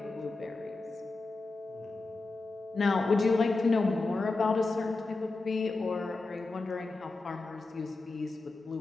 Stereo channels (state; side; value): quieter; right; 3.4 dB